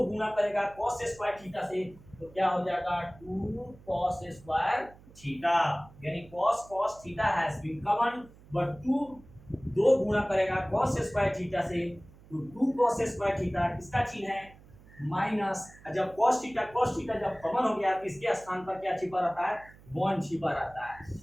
गुना करेगा cos स्क्वायर थीटा से, तो क्या हो जाएगा 2 cos स्क्वायर थीटा, यानी cos theta has been common, but 2 गुना करेगा cos स्क्वायर थीटा से, तो 2 cos स्क्वायर थीटा किसका चिन्ह है, माइनस। जब cos थीटा जब कॉमन हो गया तो इसके स्थान पर क्या छिपा रहता है, 1 छिपा रहता है।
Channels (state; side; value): noise; right; hum, 23 dB below the sound